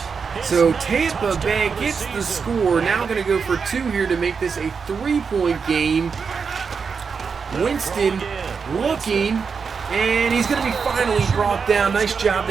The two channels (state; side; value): quieter; left; 5.7 dB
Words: So Tampa Bay gets the score. Now going to go for 2 here to make this a 3-point game. Winston looking, and he's going to be finally brought down. Nice job